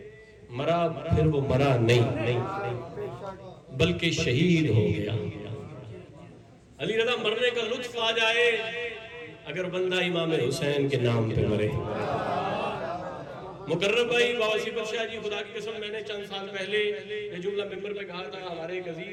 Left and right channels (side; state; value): both; identical; correlation 1.00